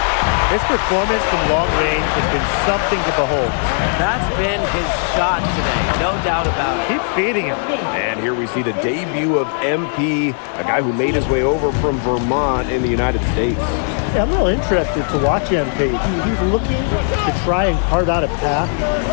His performance from long range has been something to behold. That's been his shot today, no doubt about it. Keep feeding him. And here we see the debut of MP, a guy who made his way over from Vermont in the United States. Yeah, I'm real interested to watch MP. He's looking to try and carve out a path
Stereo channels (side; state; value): right; silent; 61 dB below the other